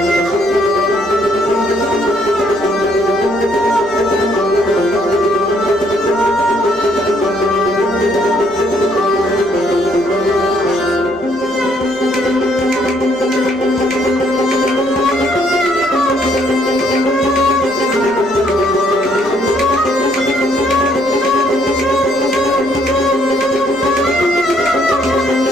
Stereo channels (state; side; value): noise; right; rumble, 26 dB below the sound